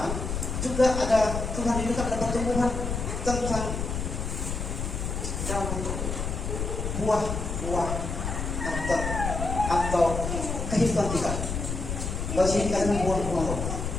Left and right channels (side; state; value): left; noise; rumble, 3 dB below the sound